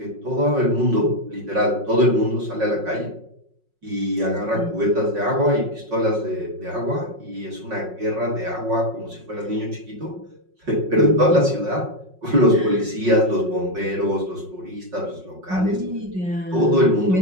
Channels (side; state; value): left; late; 5.5 ms